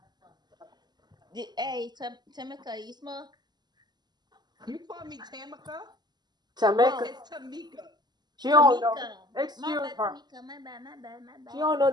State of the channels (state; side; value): late; left; 0.20 ms